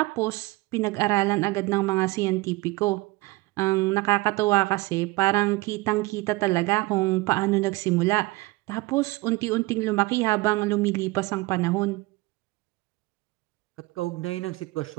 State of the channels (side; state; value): left; quieter; 21.7 dB